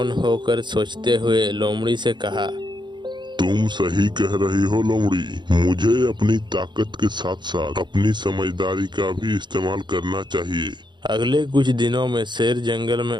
होकर सोचते हुए लोमड़ी से कहा, तुम सही कह रही हो लोमड़ी, मुझे अपनी ताकत के साथ साथ अपनी समझदारी का भी इस्तेमाल करना चाहिए। अगले कुछ दिनों में शेर जंगल में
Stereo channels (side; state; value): left; late; 0.22 ms